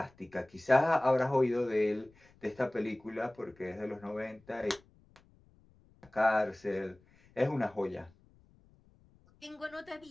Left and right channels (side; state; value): left; noise; rumble, 29 dB below the sound